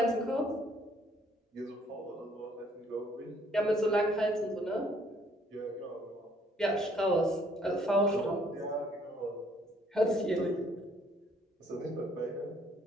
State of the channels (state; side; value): normal; both; correlation 0.63